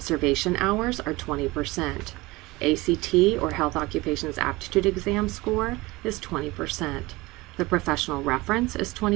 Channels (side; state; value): left; quieter; 21.4 dB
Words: hours are 20%. ACT, or Health Occupations Aptitude Exam score, is 20%. The professional reference is